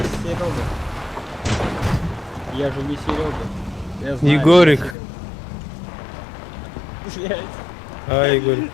Серега. Я же не Серега. Я знаю, Егорик. Блять. А, Егор.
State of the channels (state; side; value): drops out; right; at 5.0 s